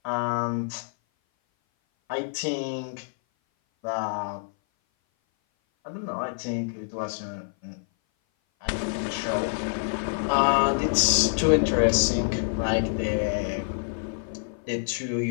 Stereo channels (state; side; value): silent; right; 57 dB below the other